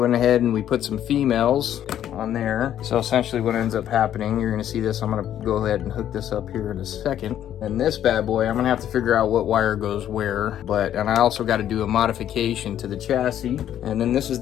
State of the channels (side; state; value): right; quieter; 10.9 dB